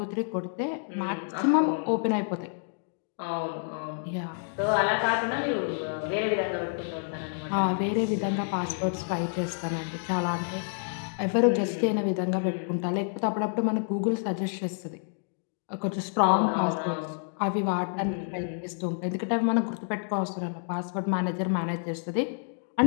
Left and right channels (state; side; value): silent; right; digital silence